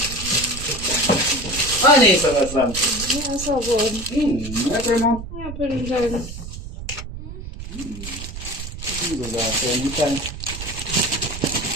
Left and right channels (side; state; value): right; noise; rumble, 10 dB below the sound